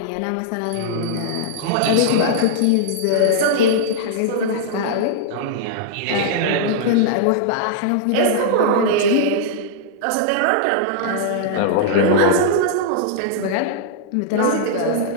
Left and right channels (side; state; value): both; different; correlation -0.01